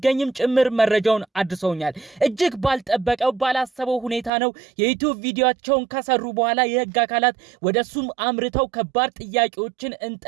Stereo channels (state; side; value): drops out; left; at 4.3 s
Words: ጭምር መረጃውን አድርሰውኛል። እጅግ ባልጠበቀው ባላሰበው ሁኔታ ነው የዩቲዩብ ቪዲዮአቸውን ከሰሩ በኋላ የሕግ አካላት ወደሱም አምርተው ከባድ ጥያቄዎችን